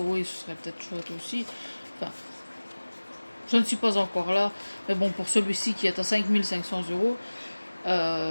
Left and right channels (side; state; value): both; inverted; correlation -1.00